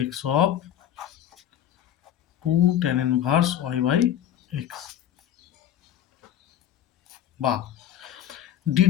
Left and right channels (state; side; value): quieter; right; 10.8 dB